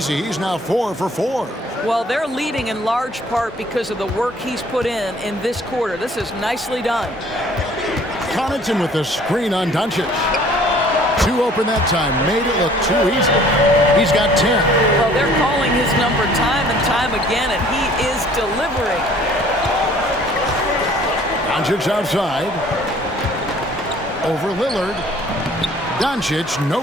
He's now 4 for 4. Well, they're leading in large part because of the work he's put in this quarter. This is nicely done. Connaughton with the screen on Doncic. 2 open that time. Made it look too easy. He's got 10. Well, they're calling his number time and time again, and he is delivering. Doncic outside. Over Lillard. Doncic, no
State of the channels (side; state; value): both; normal; correlation 0.54